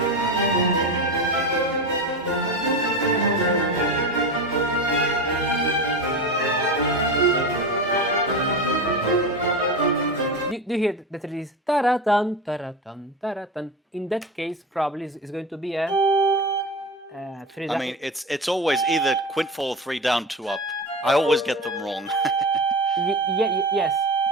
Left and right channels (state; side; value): normal; both; correlation 0.24